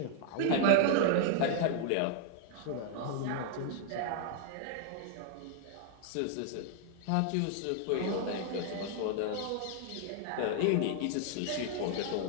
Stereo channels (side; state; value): both; different; correlation 0.00